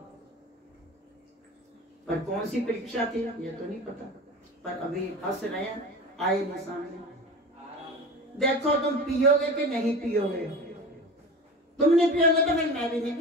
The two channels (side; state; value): both; normal; correlation 0.32